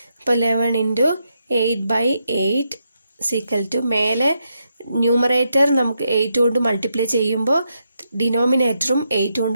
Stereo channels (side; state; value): both; inverted; correlation -0.82